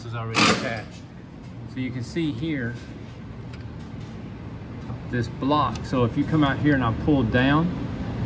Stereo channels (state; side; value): identical; both; correlation 1.00